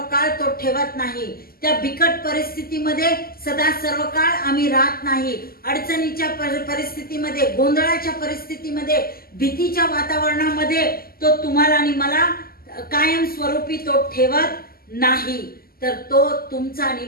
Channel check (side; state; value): right; late; 0.43 ms